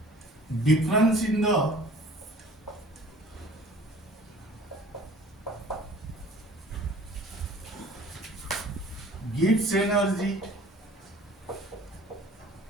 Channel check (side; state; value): both; normal; correlation 0.49